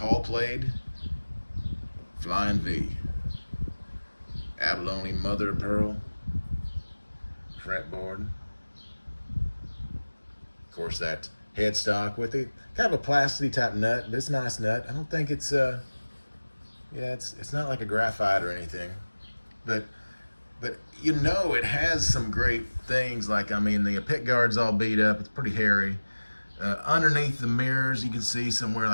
played Flying V. Abalone mother of pearl. Fretboard. Of course, that headstock with it. Kind of a plastic type nut, but it's a nice nut. I don't think it's yeah, it's not like a graphite or anything, but you know it has some great things. Like, I mean, the pick guard's all beat up. It's pretty hairy. Underneath the mirrors, you can see somewhere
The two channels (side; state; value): both; inverted; correlation -1.00